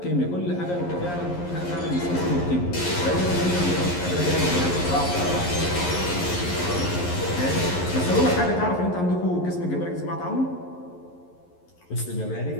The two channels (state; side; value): late; right; 11 ms